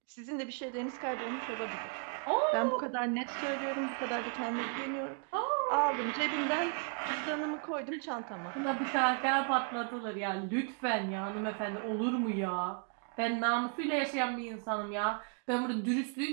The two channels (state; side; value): quieter; left; 39.9 dB